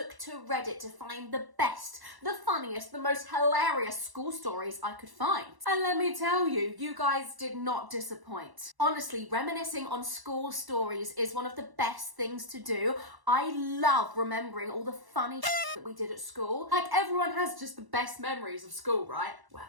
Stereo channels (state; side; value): late; left; 1.0 ms